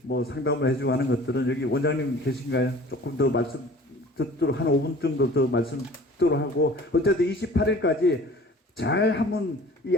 뭐 상담을 해주고 하는 것들은 여기 원장님 계신가요? 조금 더 말씀 듣도록 한 5분 정도 더 말씀 듣도록 하고 어쨌든 28일까지 잘 한번 이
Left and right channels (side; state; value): both; normal; correlation 0.46